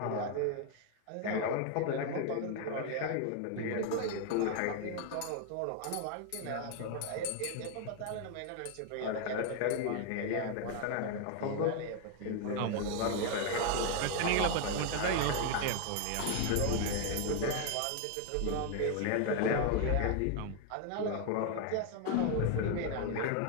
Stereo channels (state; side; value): different; both; correlation 0.01